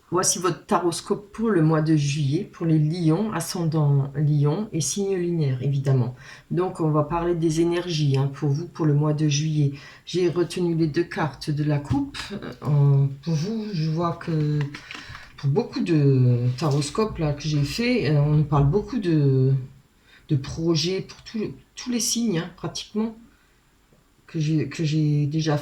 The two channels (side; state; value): both; identical; correlation 1.00